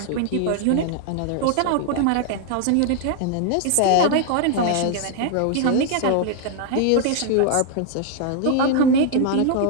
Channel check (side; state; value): both; different; correlation 0.00